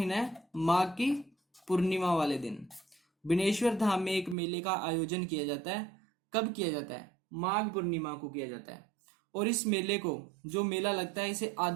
है, माघ की पूर्णिमा वाले दिन बनेश्वर धाम में एक मेले का आयोजन किया जाता है। कब किया जाता है? माघ पूर्णिमा को किया जाता है। और इस मेले को, जो मेला लगता है, इसे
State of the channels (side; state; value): left; drops out; at 4.4 s